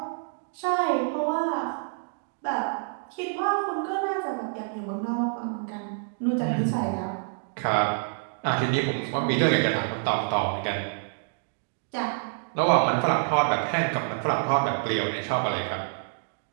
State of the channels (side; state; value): left; silent; digital silence